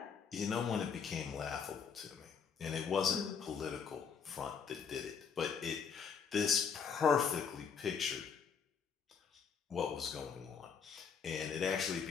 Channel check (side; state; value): right; quieter; 6.4 dB